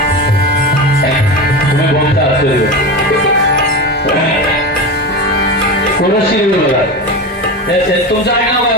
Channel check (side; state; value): both; normal; correlation 0.23